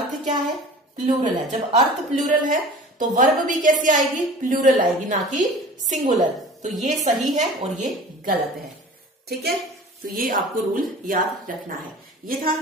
क्या है, प्लूरल है। जब अर्थ प्लूरल है तो वर्ब भी कैसी आएगी, प्लूरल आएगी, ना कि सिंगुलर। तो ये सही है और ये गलत है, ठीक है। तो ये आपको रूल याद रखना है। ये था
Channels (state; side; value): normal; both; correlation 0.41